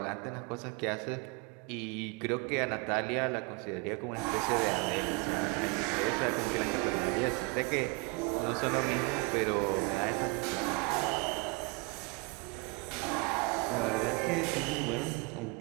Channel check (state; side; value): quieter; left; 27.7 dB